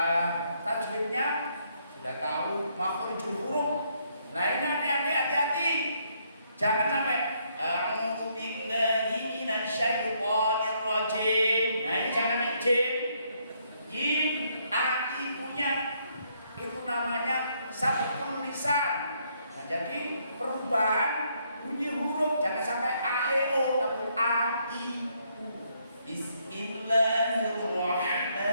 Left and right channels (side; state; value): both; inverted; correlation -0.72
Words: tajwidnya sudah tahu makhrijul huruf. Nah, ini hati-hati, jangan sampai a'udzu billahi minasyaitonir rajim. Nah, ini jangan namanya jim. Jim ibunya itu namanya sabqul lisan. Nah, jadi perubahan bunyi huruf jangan sampai a e o tapi a i u.